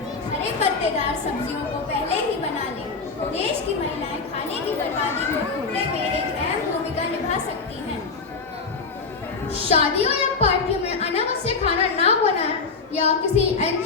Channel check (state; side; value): quieter; right; 4.6 dB